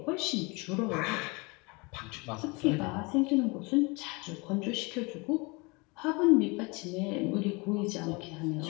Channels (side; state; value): right; quieter; 27.6 dB